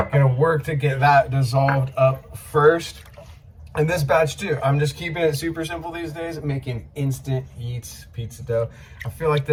Gonna work to get that dissolved up first. And this batch too, I'm just keeping it super simple these days, making instant eats pizza dough. I feel like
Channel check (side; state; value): both; identical; correlation 1.00